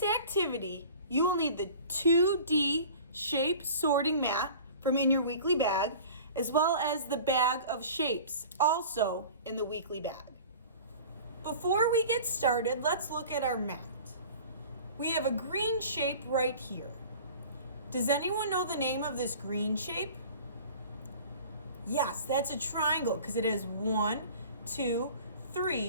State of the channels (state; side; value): inverted; both; correlation -0.42